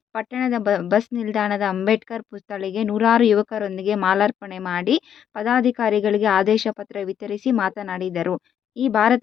ಪಟ್ಟಣದ ಬಸ್ ನಿಲ್ದಾಣದ ಅಂಬೇಡ್ಕರ್ ಪುತ್ಥಳಿಗೆ ನೂರಾರು ಯುವಕರೊಂದಿಗೆ ಮಾಲಾರ್ಪಣೆ ಮಾಡಿ ಪದಾಧಿಕಾರಿಗಳಿಗೆ ಆದೇಶ ಪತ್ರ ವಿತರಿಸಿ ಮಾತನಾಡಿದರು. ಈ ಭಾರತ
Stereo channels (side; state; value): right; quieter; 9.1 dB